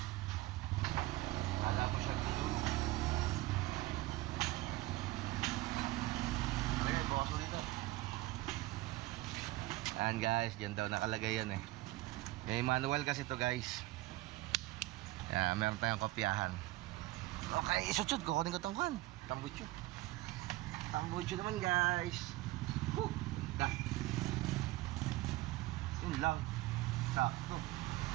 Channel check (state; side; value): quieter; left; 18.4 dB